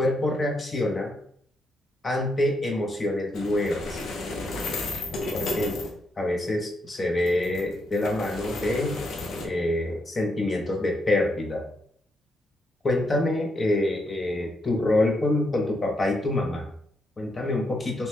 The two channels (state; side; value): normal; both; correlation 0.79